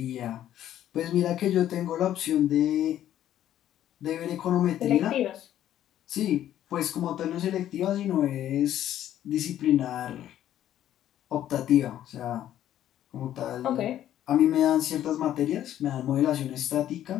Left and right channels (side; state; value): right; quieter; 11.8 dB